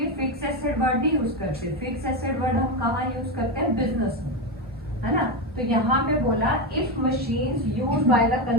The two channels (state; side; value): normal; both; correlation 0.12